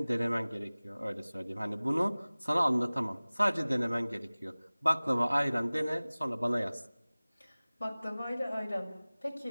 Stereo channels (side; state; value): both; inverted; correlation -0.99